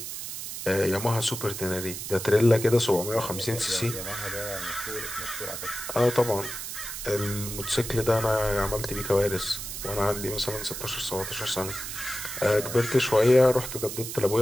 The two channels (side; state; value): right; noise; hiss, 7 dB below the sound